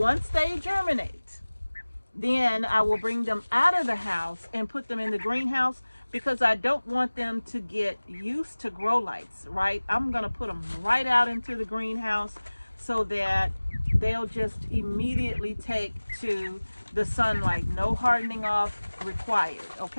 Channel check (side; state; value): both; inverted; correlation -1.00